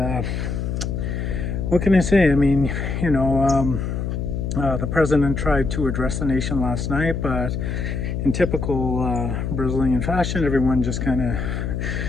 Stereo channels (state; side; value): noise; left; hum, 2 dB below the sound